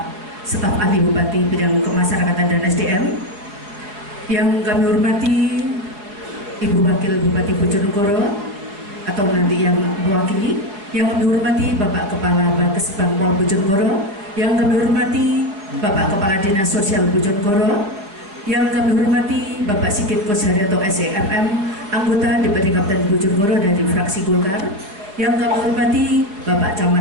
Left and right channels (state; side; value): late; left; 4.9 ms